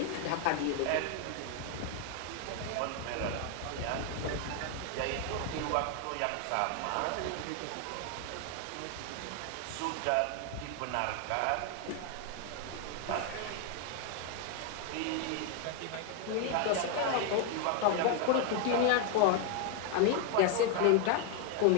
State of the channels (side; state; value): both; different; correlation 0.00